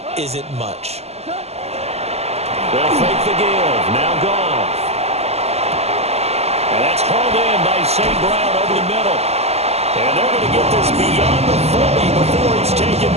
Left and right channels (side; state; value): left; late; 0.30 ms